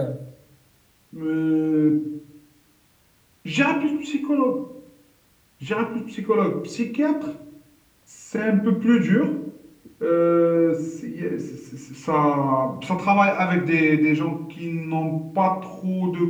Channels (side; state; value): both; identical; correlation 1.00